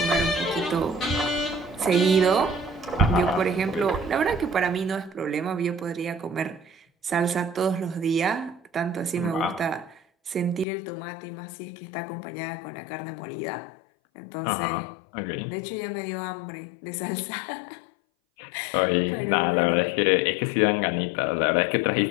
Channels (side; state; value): right; drops out; at 10.7 s